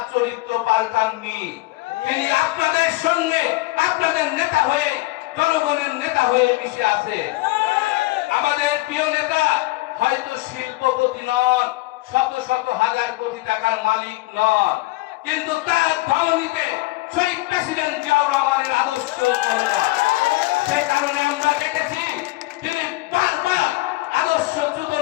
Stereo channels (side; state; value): right; quieter; 20.6 dB